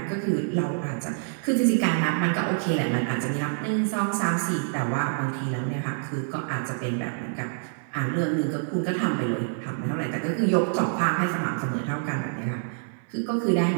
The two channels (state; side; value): silent; left; 61 dB below the other